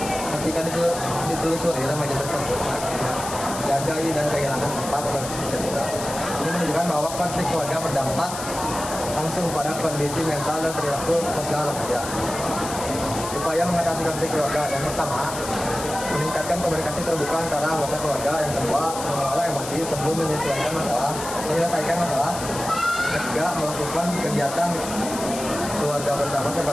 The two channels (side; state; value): left; noise; hiss, 9 dB below the sound